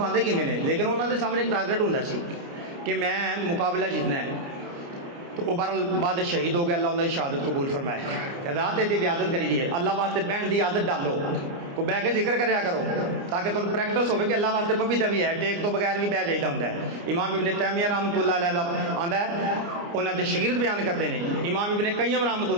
किमें ने। लेकिन उन्होंने सामने एक टारगेट होंगे सी कि मैं मुकाबला जीतना है। तो वो बहरहाल बाद शहीद हो गया, अल्लाह उन्होंने शहादत कबूल फरमाए। रात की इजाजत करीजिए, अल्लाह वास्ते बहन की आदत डालो, को बह के जिक्र कराया करो ताकि तुम प्रैक्टिस हो कि अल्लाह वास्ते पपीता भी है, टेक तो बगैर भी बह जाइदा होंदा है। इमाम इब्ने तैमिया रहमतुल्लाह अलैह दा आंदा है, उन्होंने शागिर्द बयान करते हैं इमाम इब्ने कय्यम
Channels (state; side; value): late; left; 29 ms